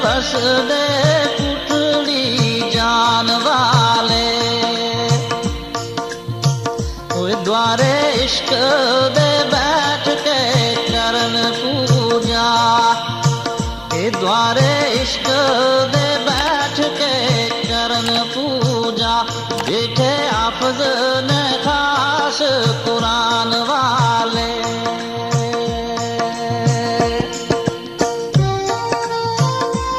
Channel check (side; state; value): both; identical; correlation 1.00